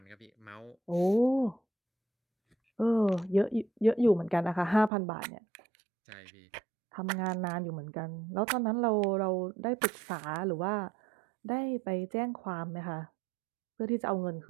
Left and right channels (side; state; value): left; drops out; at 4.9 s